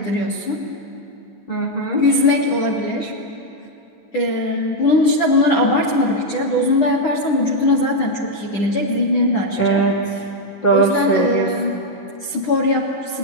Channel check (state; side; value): late; right; 9.9 ms